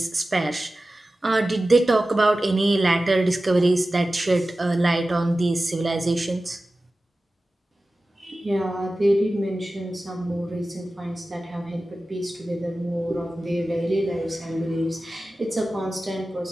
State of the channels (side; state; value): both; normal; correlation 0.95